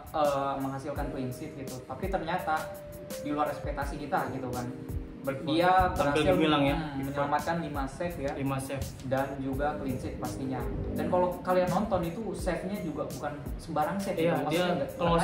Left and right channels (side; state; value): both; identical; correlation 1.00